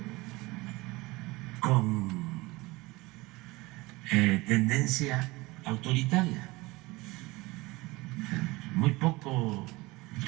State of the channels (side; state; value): left; quieter; 22.2 dB